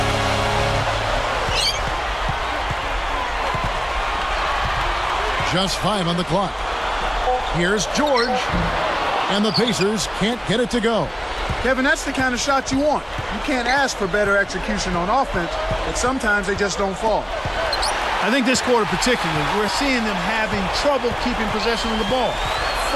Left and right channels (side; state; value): both; identical; correlation 1.00